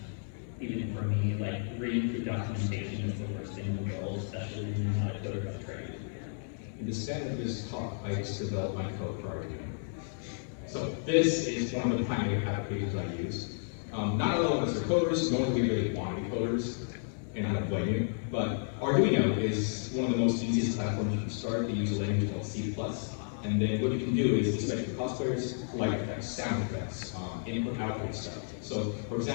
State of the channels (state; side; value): silent; right; digital silence